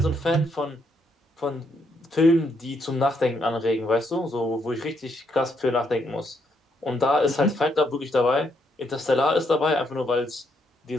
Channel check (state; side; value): normal; both; correlation 0.75